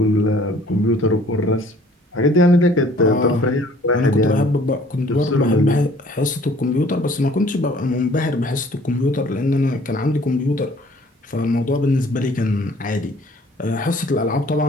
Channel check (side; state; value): both; normal; correlation 0.55